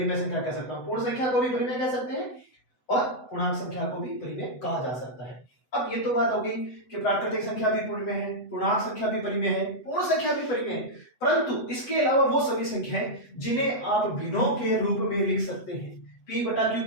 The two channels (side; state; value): right; late; 8.0 ms